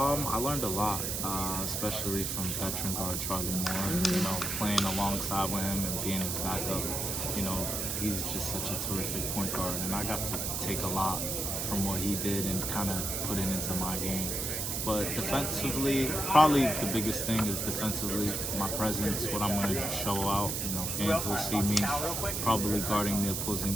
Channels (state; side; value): noise; right; hiss, 1 dB below the sound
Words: learned a lot, especially from veteran guard Charlie Moore. Playing alongside with him and being his backup. He's just such a terrific point guard, and I got to take a lot from what he did and kind of put it into my game. But defensively, probably the biggest thing is defensively, my presence, what I'm going to show out. Fans will see me probably guarding the opposing